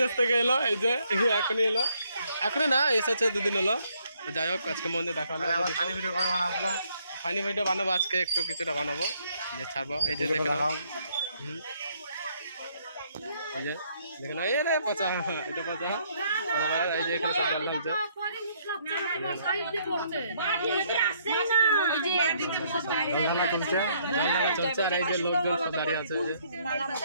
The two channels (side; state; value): both; inverted; correlation -0.69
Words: থেকে এলো, এই যে এখনই এলো, এখনই না এসেছে 2 দিন হলো। তো যাই হোক আজকে মন্দির দেখা হলো। আবার ফানি ভিডিও কবে বানাবো? ফানি ভিডিও বানাবো আজকে, একটু কিছুটা বানাবো, যে ছাড়বো। এই যে দেখে নাও, এই যে দেখে নাও, এই রে পচা, এটা পচা। এই যে এখানে সব জল ঢালছে, ঢালা চলছে, চলছে। আর এই যে লোকজন সব দাঁড়িয়ে আছে,